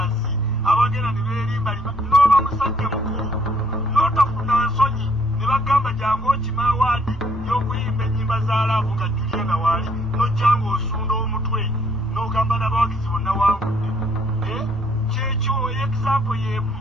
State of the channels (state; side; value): normal; both; correlation 0.66